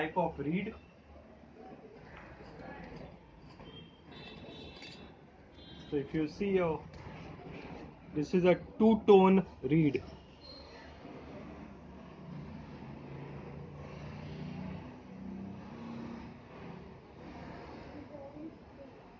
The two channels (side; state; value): both; identical; correlation 1.00